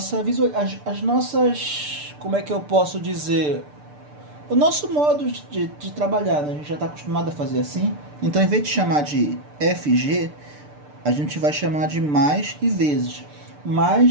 as nossas, como é que eu posso dizer, o nosso modo de trabalhar, né? A gente já está acostumado a fazer assim. Então, em vez de chamar de FG, a gente vai chamar de mais e vezes,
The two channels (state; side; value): late; left; 6.8 ms